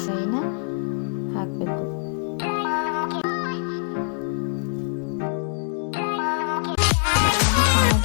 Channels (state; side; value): silent; right; 62 dB below the other